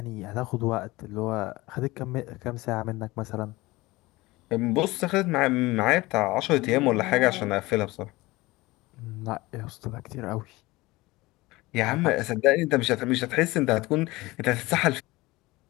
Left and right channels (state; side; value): quieter; right; 20.7 dB